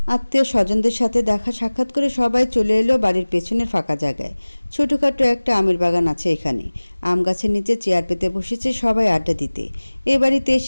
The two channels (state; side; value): inverted; both; correlation -1.00